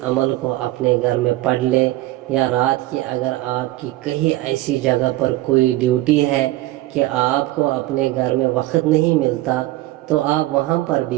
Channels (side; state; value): left; quieter; 17.1 dB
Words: عمل کو اپنے گھر میں پڑھ لیں، یا رات کی اگر آپ کی کہیں ایسی جگہ پر کوئی ڈیوٹی ہے کہ آپ کو اپنے گھر میں وقت نہیں ملتا، تو آپ وہاں پر بھی